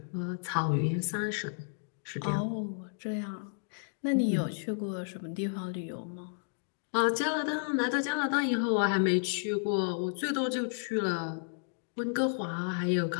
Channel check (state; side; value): silent; right; digital silence